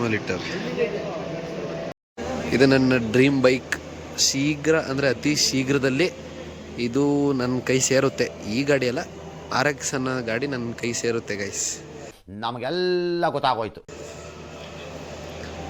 ಇಟ್ಟಾರೆ. ಇದು ನನ್ನ ಡ್ರೀಮ್ ಬೈಕ್. ಶೀಘ್ರ ಅಂದರೆ ಅತಿ ಶೀಘ್ರದಲ್ಲಿ ಇದು ನನ್ನ ಕೈ ಸೇರುತ್ತೆ. ಈ ಗಾಡಿ ಅಲ್ಲ, RX ಅನ್ನೋ ಗಾಡಿ ನನ್ನ ಕೈ ಸೇರುತ್ತೆ ಗೈಸ್. ನಮಗೆಲ್ಲ ಗೊತ್ತಾಗೋಯ್ತು.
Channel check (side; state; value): both; identical; correlation 1.00